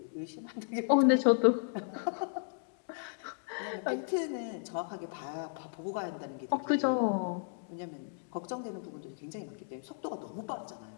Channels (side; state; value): right; silent; digital silence